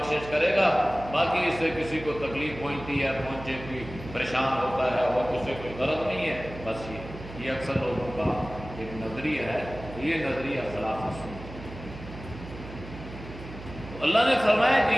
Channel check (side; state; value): right; noise; hum, 13 dB below the sound